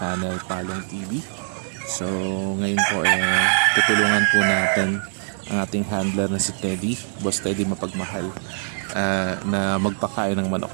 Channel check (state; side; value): silent; left; digital silence